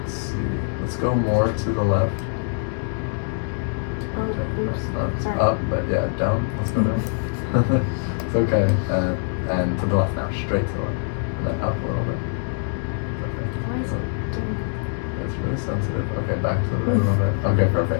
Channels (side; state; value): right; silent; digital silence